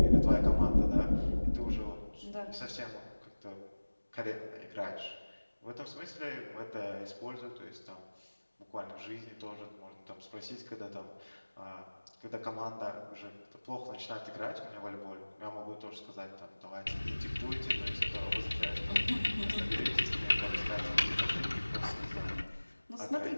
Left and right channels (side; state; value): both; inverted; correlation -1.00